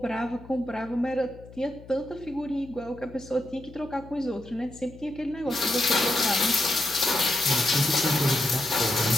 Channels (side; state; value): left; noise; hum, 19 dB below the sound